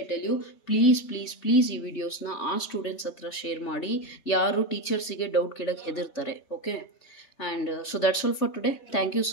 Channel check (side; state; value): right; late; 3.3 ms